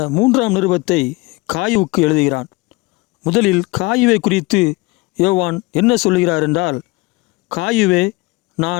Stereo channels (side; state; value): right; quieter; 23.5 dB